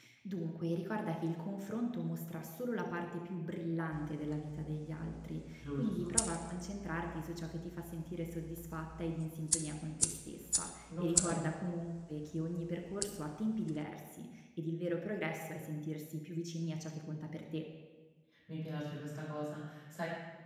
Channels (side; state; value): both; identical; correlation 1.00